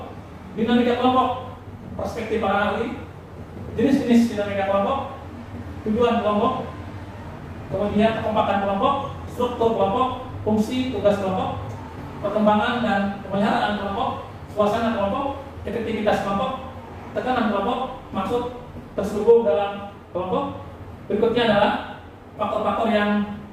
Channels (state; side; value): identical; both; correlation 1.00